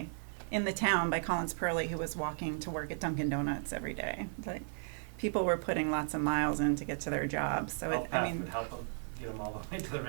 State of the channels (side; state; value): left; silent; 54 dB below the other